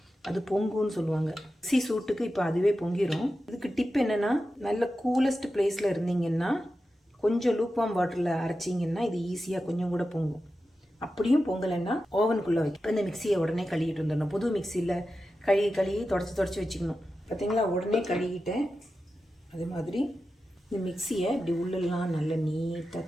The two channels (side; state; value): both; normal; correlation 0.92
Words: அது பொங்குன்னு சொல்லுவாங்க. மிக்ஸி சூட்டுக்கு இப்போ அதுவே பொங்கிடும். இதுக்கு டிப் என்னென்னா, நல்ல கூலஸ்ட் பிளேஸில் இருந்தீங்கன்னா கொஞ்சம் லூக்வார்ம் வாட்டரில் அரைச்சிங்கன்னா இது ஈஸியாக கொஞ்சம் கூட பொங்கும். அப்படியும் பொங்கலைன்னா ஓவனுக்குள்ளே வைக்க. இப்போ இந்த மிக்சியை உடனே கழுவிட்டு வந்துடணும். புது மிக்சியில் கழுவி தொடச்சி வச்சுக்கணும். பார்த்தீங்களா, உடனே கழுவிட்டேன். அதே மாதிரி இந்த மிக்சியை இப்படி உள்ளெல்லாம் நல்லா